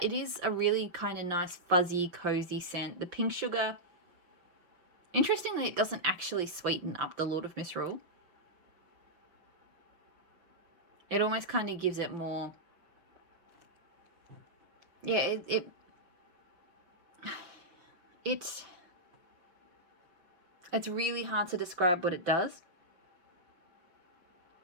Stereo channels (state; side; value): late; left; 5.9 ms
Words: it is a really kind of nice, fuzzy, cozy scent. The pink sugar, interestingly, it doesn't actually sweeten up the Lord of Misrule. It almost kind of gives it more, yeah, it's really hard to describe what it does.